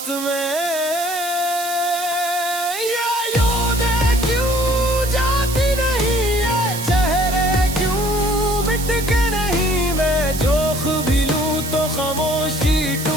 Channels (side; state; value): right; noise; hiss, 8 dB below the sound